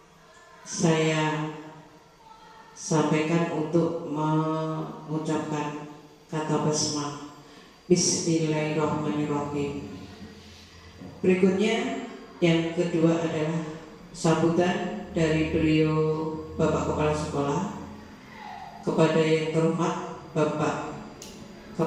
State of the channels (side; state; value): both; identical; correlation 1.00